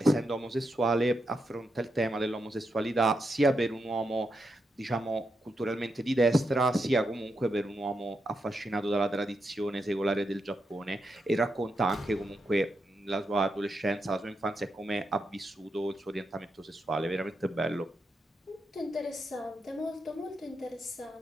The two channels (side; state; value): both; normal; correlation 0.84